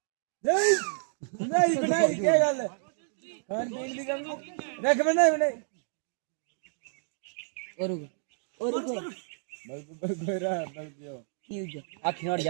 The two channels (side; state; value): left; silent; digital silence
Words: नहीं बनाई क्या गल है खान पीन दी कमी रख बनाई और गोरा आखिर